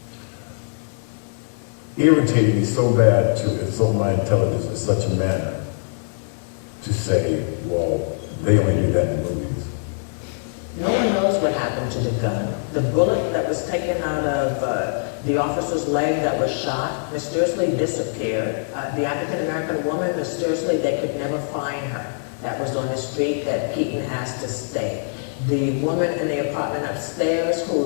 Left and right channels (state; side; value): silent; right; digital silence